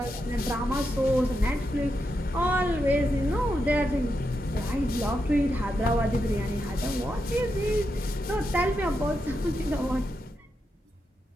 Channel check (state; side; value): normal; both; correlation 0.85